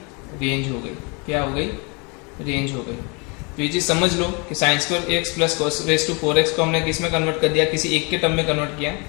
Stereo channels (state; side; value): quieter; right; 31.6 dB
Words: रेंज हो गई। क्या हो गई, रेंज हो गई। तो ये चीज़ समझ लो कि sine square x plus cos raise to 4x को हमने किस में कन्वर्ट कर दिया, किसी एक के टर्म में कन्वर्ट किया,